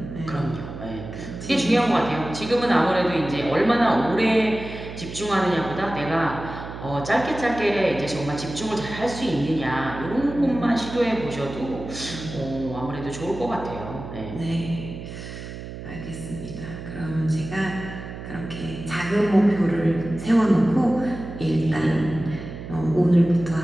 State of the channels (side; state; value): right; noise; hum, 10 dB below the sound